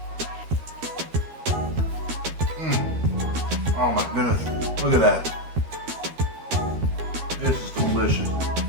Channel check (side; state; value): left; late; 13 ms